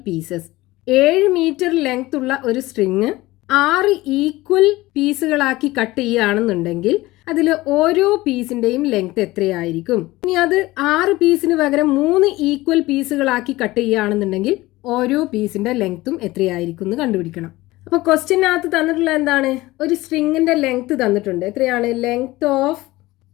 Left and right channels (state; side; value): quieter; right; 19.0 dB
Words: pieces? 7 metre length ഉള്ള ഒരു സ്ട്രിങ് 6 ഈക്വൽ പീസുകളാക്കി കട്ട് ചെയ്യുകയാണെന്നുണ്ടെങ്കിൽ അതിൽ ഓരോ പീസിൻ്റെയും ലെങ്ത് എത്രയായിരിക്കും? ഇനി അത് 6 പീസിന് പകരം 3 ഈക്വൽ പീസുകളാക്കി കട്ട് ചെയ്യുകയാണെന്നുണ്ടെങ്കിൽ ഓരോ പീസിൻ്റെ ലെങ്ത്തും എത്രയായിരിക്കും എന്ന് കണ്ടുപിടിക്കണം. അപ്പോൾ ക്വസ്റ്റ്യനകത്ത് തന്നിട്ടുള്ള എന്താണ്? ഒരു സ്ട്രിങ്ങിൻ്റെ ലെങ്ത് തന്നിട്ടുണ്ട്. എത്രയാണ്? Length of